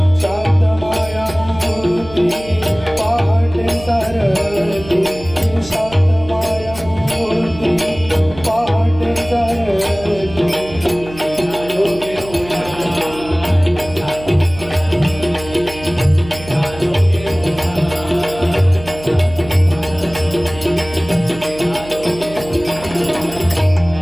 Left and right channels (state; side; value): noise; right; hum, 16 dB below the sound